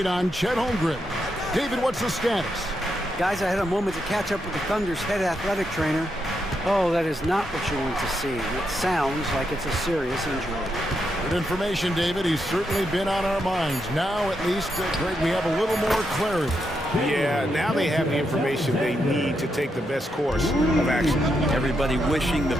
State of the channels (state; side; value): normal; both; correlation 0.82